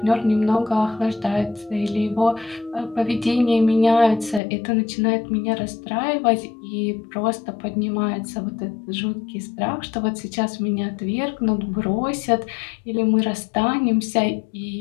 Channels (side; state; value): right; drops out; at 4.4 s